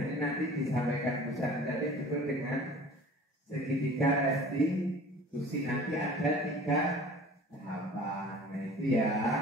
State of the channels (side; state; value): both; normal; correlation 0.45